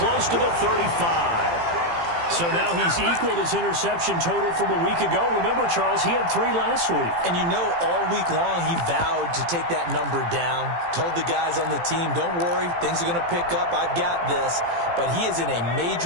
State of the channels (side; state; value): left; late; 18 ms